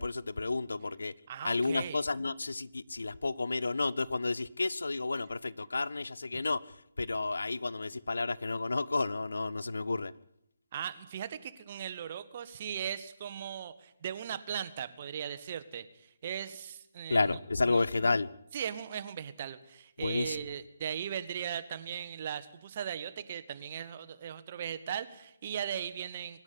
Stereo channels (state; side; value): inverted; both; correlation -0.87